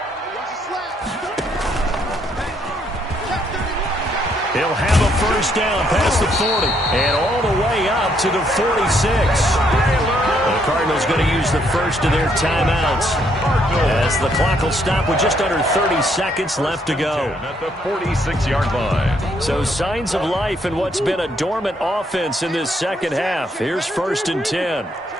He'll have a first down past the 40 and all the way up to the 46. The Cardinals going to use the first of their timeouts, as the clock will stop with just under 30 seconds left to go. At the 46-yard line. So signs of life in what's been a dormant offense in this second half. Here's 1st and 10.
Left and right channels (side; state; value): both; normal; correlation 0.71